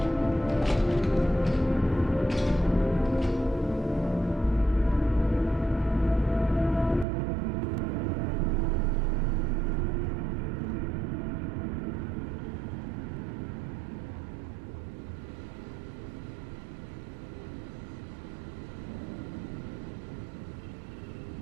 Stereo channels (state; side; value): drops out; left; at 7.1 s